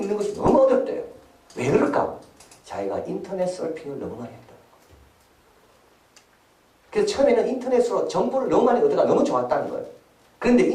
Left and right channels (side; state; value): both; identical; correlation 1.00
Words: 것이 너무 어렵대요. 왜 그럴까? 자기가 인터넷 서핑을 너무 많이 했다. 그래서 처음에는 인터넷으로 정보를 너무 많이 얻어가 너무 좋았다는 거예요. 그런데